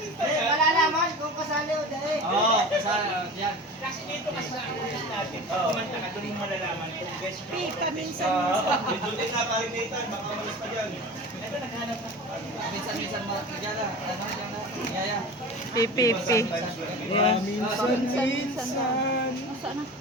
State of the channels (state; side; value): normal; both; correlation 0.34